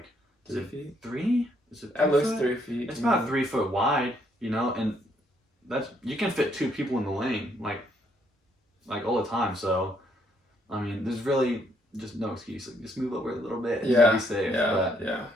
is 3 it feet. 3? Is it 3 That looks foot? 3 feet. It's about 3 foot wide, and you can fit 2 people in the lane, like all the time. So, I mean, there's really just no excuse. Like, just move over a little bit and Yeah. be safe. But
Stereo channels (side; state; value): both; normal; correlation 0.71